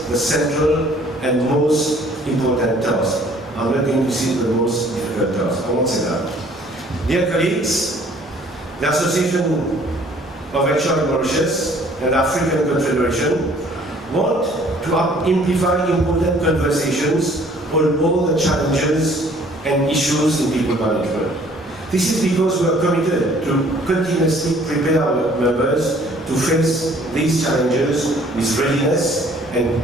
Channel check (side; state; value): both; normal; correlation 0.57